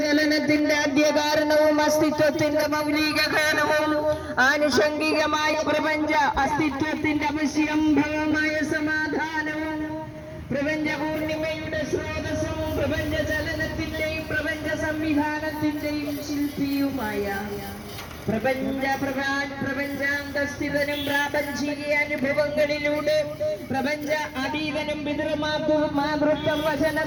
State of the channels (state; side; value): identical; both; correlation 1.00